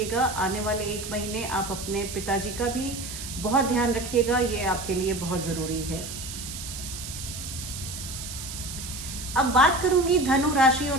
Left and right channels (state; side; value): noise; right; hiss, 9 dB below the sound